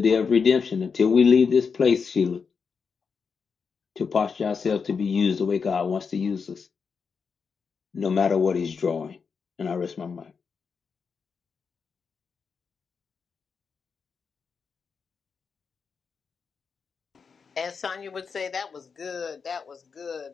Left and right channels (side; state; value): right; quieter; 5.7 dB